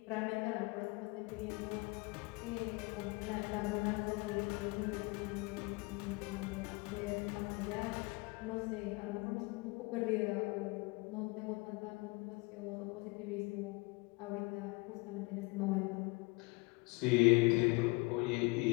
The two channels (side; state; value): right; quieter; 27.0 dB